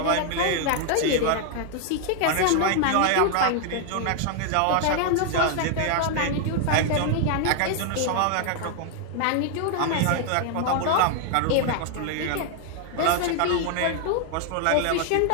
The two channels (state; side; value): different; both; correlation 0.00